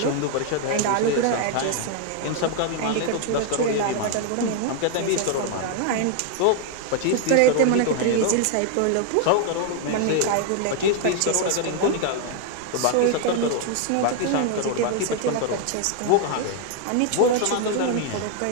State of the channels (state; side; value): different; both; correlation 0.00